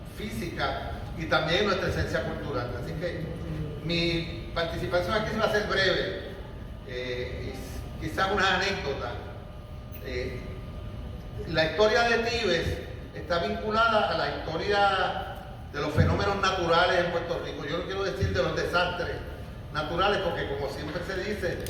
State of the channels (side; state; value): both; identical; correlation 1.00